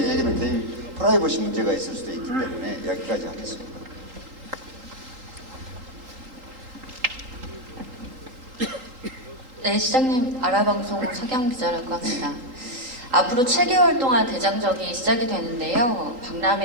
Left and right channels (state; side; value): late; left; 3.8 ms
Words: 얘기는 개인 프라이버시 문제가 있을 수도 있기 때문에 여기까지 하겠습니다. 네, 시장님, 아라방송 서경 기자라고 합니다. 앞으로 7개월 동안 대장정이 시작이 되는데요.